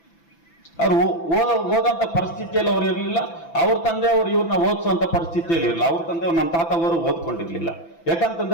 ಅವ್ರು ಓದಂತ ಪರಿಸ್ಥಿತಿಯಲ್ಲಿ ಅವ್ರು ಇರಲಿಲ್ಲ. ಅವ್ರ ತಂದೆ ಅವರು ಇವ್ರನ್ನ ಓದಿಸುವಂತ ಪರಿಸ್ಥಿತಿಯಲ್ಲಿ ಇರಲಿಲ್ಲ. ಅವ್ರ ತಂದೆ ನಮ್ಮ ತಾತ ಅವರು ಓದ್ಕೊಂಡಿರ್ಲಿಲ್ಲ.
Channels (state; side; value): late; right; 6.0 ms